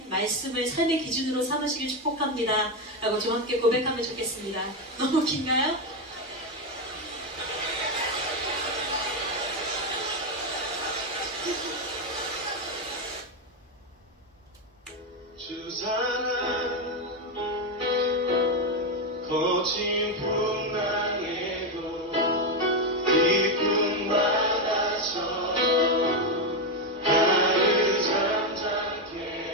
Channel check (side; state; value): both; normal; correlation 0.08